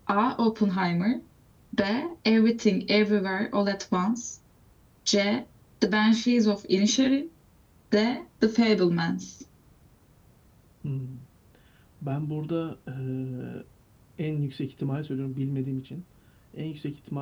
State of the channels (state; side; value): identical; both; correlation 1.00